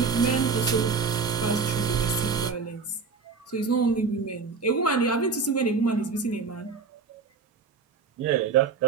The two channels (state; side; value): quieter; left; 5.0 dB